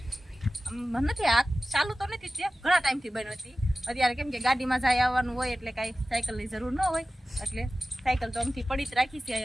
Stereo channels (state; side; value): normal; both; correlation 0.96